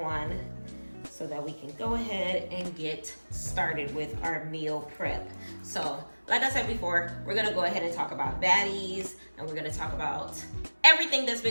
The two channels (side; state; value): both; inverted; correlation -1.00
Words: so that we can go ahead and get started with our meal prep. So, like I said before, we're gonna go ahead and talk about Baddies, and we're gonna talk about everything that's